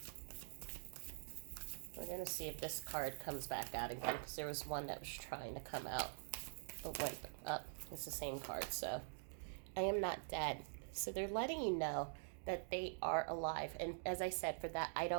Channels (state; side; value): silent; left; digital silence